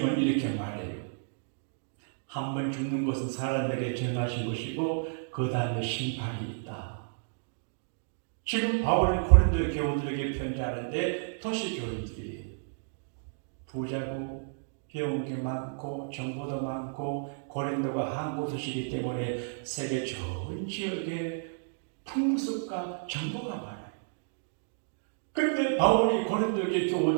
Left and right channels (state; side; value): silent; left; digital silence